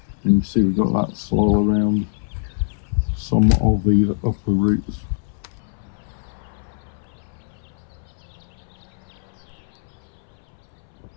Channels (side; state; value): right; silent; 63 dB below the other